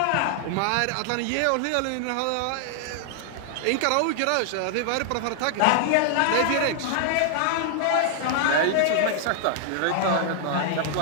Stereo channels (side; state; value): both; different; correlation 0.00